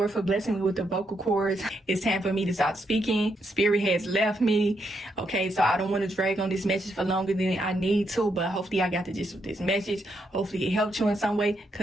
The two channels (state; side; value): normal; both; correlation 0.79